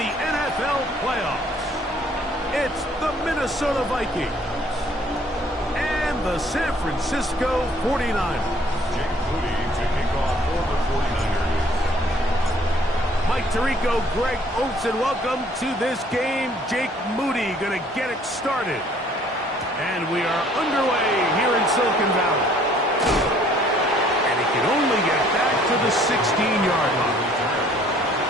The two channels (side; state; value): both; normal; correlation 0.59